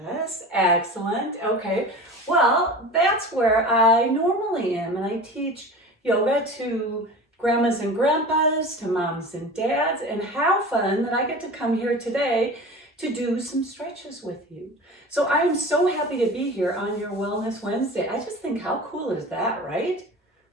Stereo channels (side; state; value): both; normal; correlation 0.35